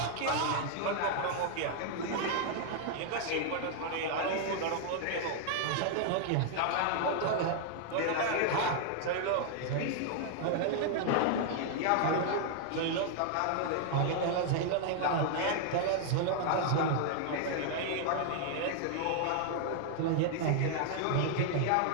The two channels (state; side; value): different; both; correlation 0.00